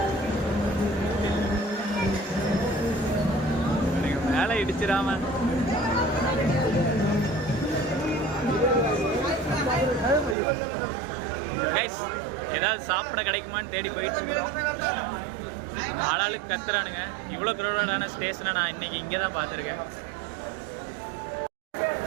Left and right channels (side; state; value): left; drops out; at 10.4 s